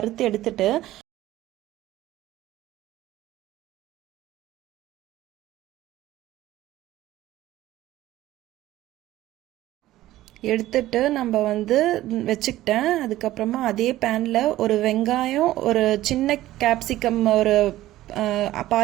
எடுத்துட்டு நம்ம வந்து வச்சுக்கிட்டேன். அதுக்கப்புறமா அதே பேனில் ஒரு வெங்காயம், ஒரு சின்ன கேப்சிகம், ஒரு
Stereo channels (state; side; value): quieter; left; 15.2 dB